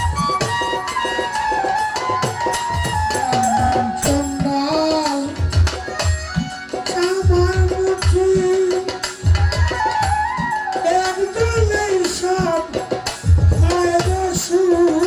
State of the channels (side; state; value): both; identical; correlation 1.00